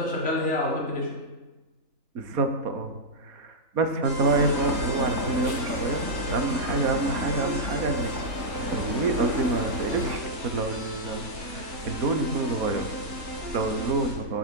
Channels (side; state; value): left; late; 3.5 ms